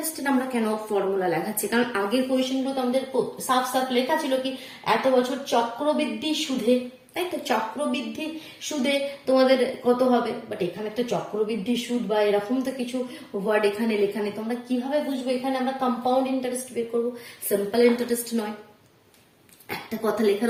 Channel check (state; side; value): identical; both; correlation 1.00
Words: আমরা কেন ফর্মুলা লেখাচ্ছি। কারণ আগের কোয়েশ্চেনগুলো তো আমাদের সাফ সাফ লেখা ছিল কি এত বছর চক্রবৃদ্ধি সুদে, তাই তো? চক্রবৃদ্ধি সুদে তোমাদের কত হবে, বাট এখানে তো চক্রবৃদ্ধি সুদ বা এরকম তো কিছু ওয়ার্ড এখানে লেখা নেই। তোমরা কিভাবে বুঝবো এখানে আমরা কম্পাউন্ড ইন্টারেস্ট বের করবো, সিম্পল ইন্টারেস্ট নয়। একটা কথা লেখা